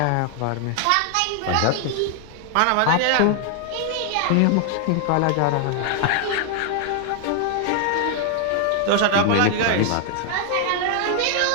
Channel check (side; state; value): both; different; correlation 0.00